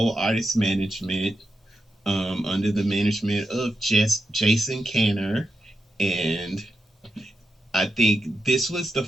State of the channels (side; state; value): both; normal; correlation 0.86